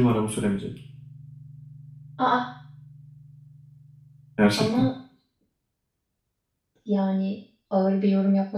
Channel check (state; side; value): identical; both; correlation 1.00